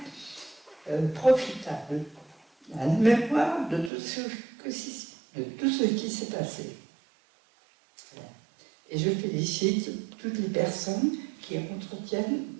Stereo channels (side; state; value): left; drops out; at 3.9 s